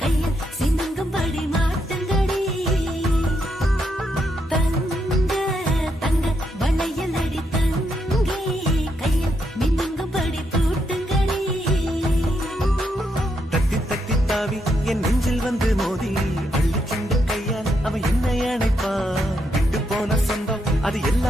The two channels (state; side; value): normal; both; correlation 0.79